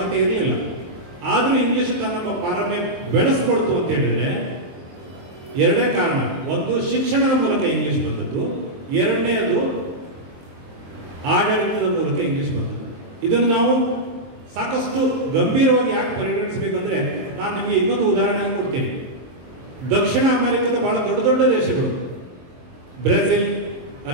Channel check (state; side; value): late; left; 23 ms